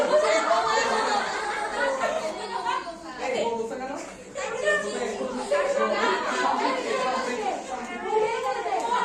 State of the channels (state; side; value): identical; both; correlation 1.00